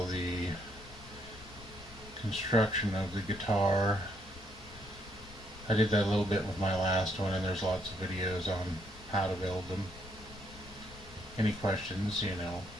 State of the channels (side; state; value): left; noise; rumble, 19 dB below the sound